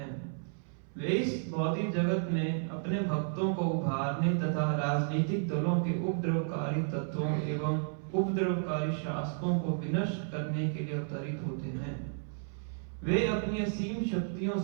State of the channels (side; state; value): left; silent; 56 dB below the other